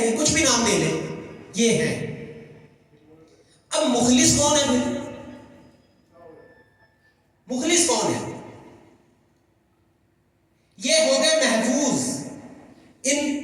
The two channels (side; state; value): both; identical; correlation 1.00